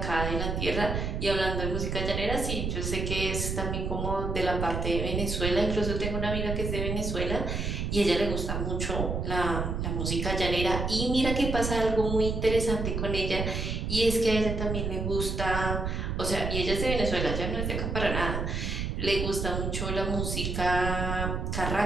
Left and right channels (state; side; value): noise; right; rumble, 2 dB below the sound